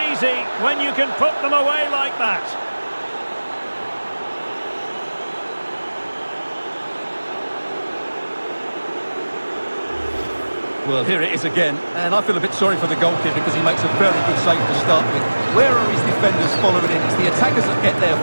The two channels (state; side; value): inverted; both; correlation -1.00